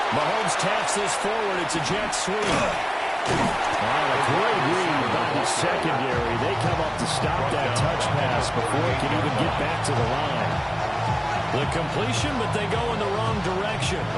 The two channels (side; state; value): both; identical; correlation 1.00